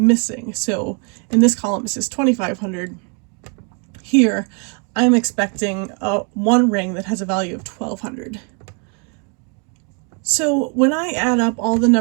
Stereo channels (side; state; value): left; quieter; 37.0 dB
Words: So in this column it says $2,500. Here, I'm expecting one ring that has a value of $1,200. So when I add up all the